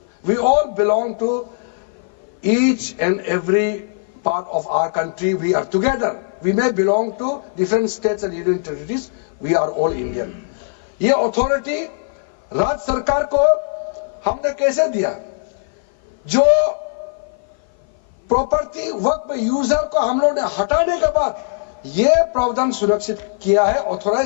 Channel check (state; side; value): silent; right; 56 dB below the other